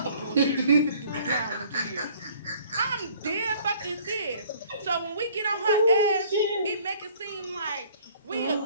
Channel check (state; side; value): inverted; both; correlation -0.56